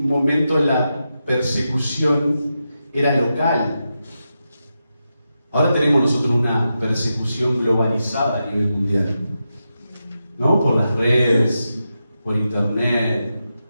momento la persecución era local. Ahora tenemos nosotros una persecución globalizada a nivel mundial, ¿no? Por las redes, por internet,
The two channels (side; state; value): both; inverted; correlation -0.88